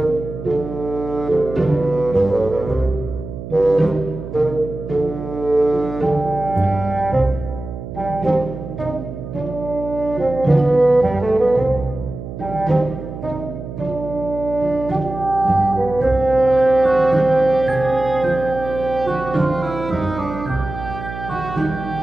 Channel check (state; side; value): noise; right; hum, 10 dB below the sound